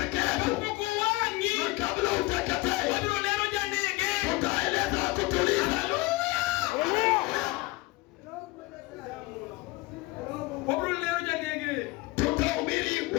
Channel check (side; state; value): right; quieter; 21.8 dB